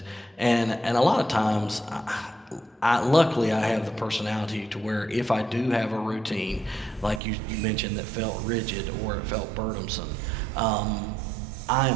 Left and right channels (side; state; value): left; drops out; at 7.2 s